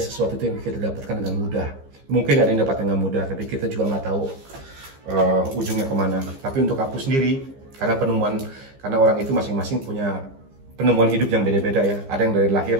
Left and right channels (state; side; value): late; left; 15 ms